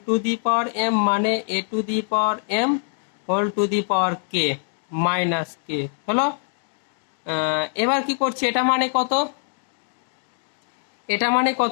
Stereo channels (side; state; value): right; silent; digital silence